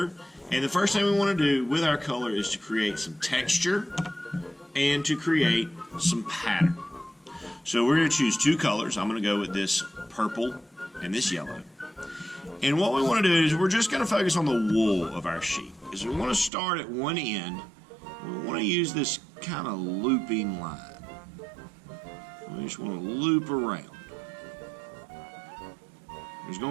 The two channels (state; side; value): drops out; left; at 16.5 s